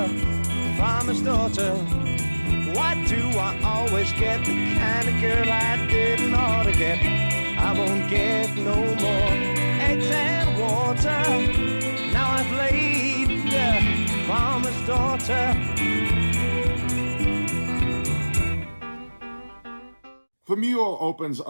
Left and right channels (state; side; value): inverted; both; correlation -1.00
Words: farmer's daughter. Why do I always get the kind of girl I didn't ought to get? I won't get no more eggs and water. Now I've laid The Mule opens